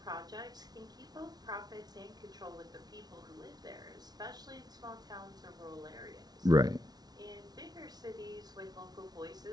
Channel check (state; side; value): late; left; 0.19 ms